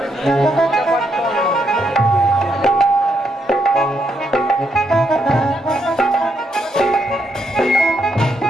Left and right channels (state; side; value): normal; both; correlation 0.77